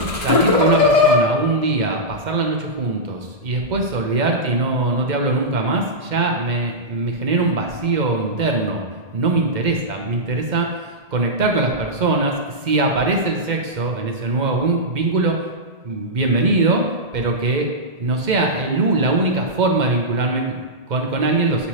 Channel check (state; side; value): late; left; 2.1 ms